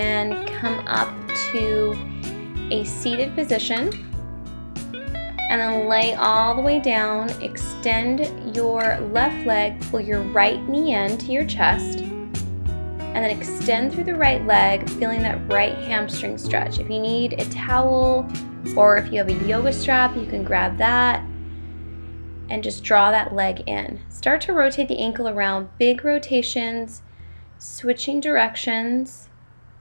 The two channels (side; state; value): both; inverted; correlation -1.00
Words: come up to a seated position and then lay all the way down. Extend your left leg, pull your right knee in to your chest, and then extend through the right leg, feeling that right hamstring stretch. If you need a towel or if you have a yoga strap, you can grab that and just draw that leg in. Start to rotate the ankle around, big rotations, switching directions,